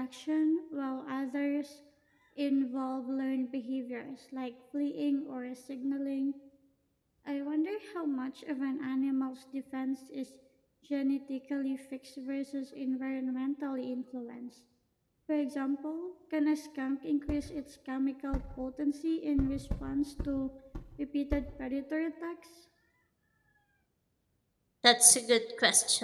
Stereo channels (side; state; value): both; identical; correlation 1.00